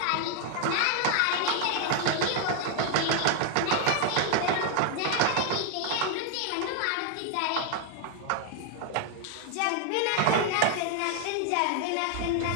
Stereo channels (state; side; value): different; both; correlation 0.00